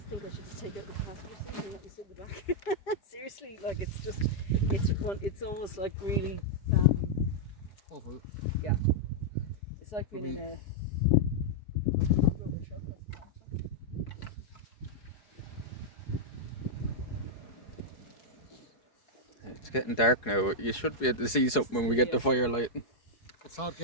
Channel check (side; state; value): right; late; 4.8 ms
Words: think I should just take out the passenger seat and let you sit in the back. Seriously, like it's almost like really, Awful. yeah. It's like being in a truck. it's getting dark now. You should be able to see something when we get the firelight. It's hard